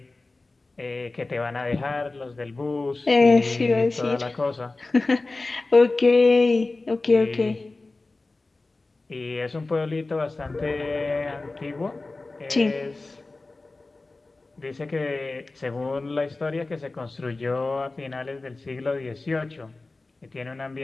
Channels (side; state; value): right; quieter; 3.3 dB